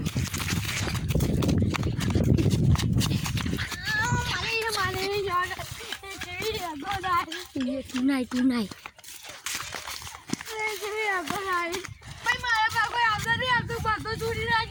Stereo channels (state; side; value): identical; both; correlation 1.00